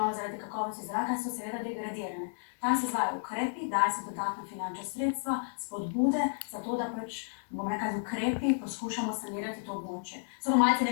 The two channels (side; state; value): right; silent; 56 dB below the other